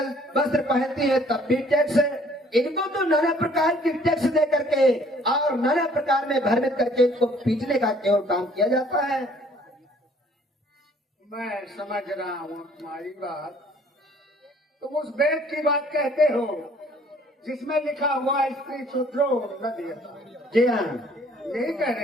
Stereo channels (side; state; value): both; normal; correlation 0.58